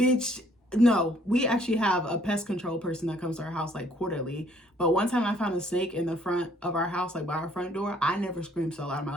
No, we actually have a pest control person that comes to our house like quarterly. But one time I found a snake in the front of our house, like by our front door. I never screamed so loud in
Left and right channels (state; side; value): normal; both; correlation 0.62